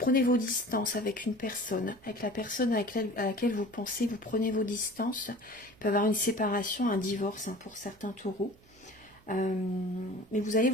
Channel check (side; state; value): right; noise; hum, 28 dB below the sound